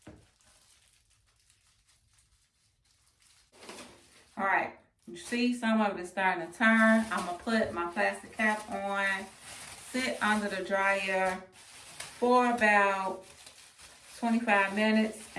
All right, you see some of it is starting to turn. I'm gonna put my plastic cap on, sit under the dryer for about 25 minutes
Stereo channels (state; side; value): identical; both; correlation 1.00